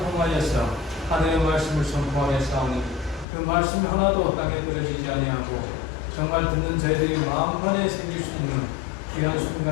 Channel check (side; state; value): right; drops out; at 3.2 s